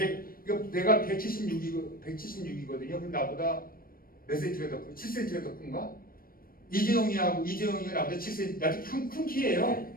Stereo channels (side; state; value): right; late; 0.42 ms